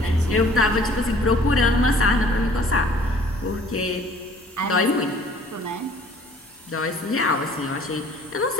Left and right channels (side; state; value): both; normal; correlation 0.54